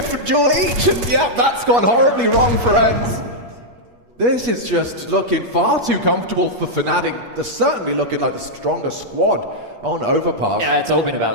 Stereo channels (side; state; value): left; late; 8.4 ms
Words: duel each, and yeah, that's gone horribly wrong for ENCE. This is just looking far too comfortable for fnatic. They're certainly looking like the stronger squad on Overpass. Yeah, it's all been